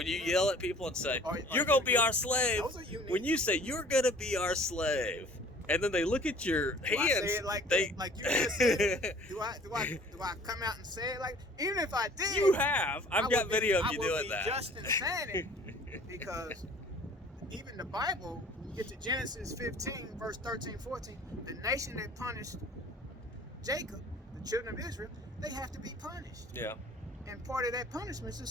people and say you're going to be our slave, when you say you're going to be our slave, and then they look at your hands. I say it like you just said? Do I come out and say it like? Even if I did, you have. I've got video of you doing that. Just in saying it, because even the Bible, when you get to Genesis 15, verse 13, 14, the nation that punished Jacob, the children of Israel, they have to be punished. Yeah. And part of that punishment is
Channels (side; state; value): both; normal; correlation 0.51